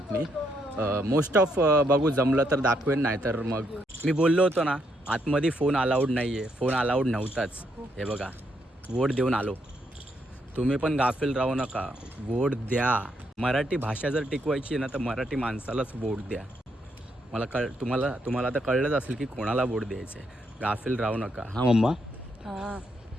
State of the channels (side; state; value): both; normal; correlation 0.76